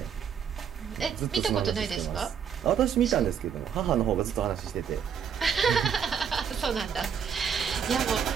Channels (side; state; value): left; quieter; 7.6 dB